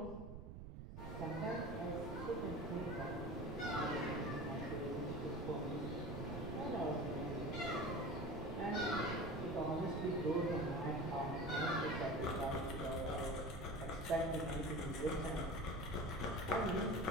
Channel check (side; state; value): right; noise; rumble, 9 dB below the sound